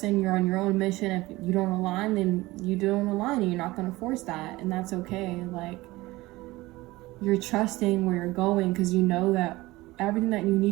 you're on your own mission. If you don't align, then you don't align, and you're not going to force that, and that's okay. Like, you're trusting where you're going because you know that everything that you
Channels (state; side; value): quieter; left; 19.6 dB